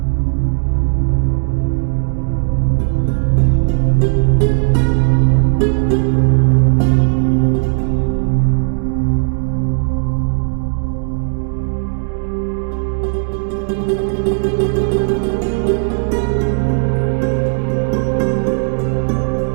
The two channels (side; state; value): left; silent; digital silence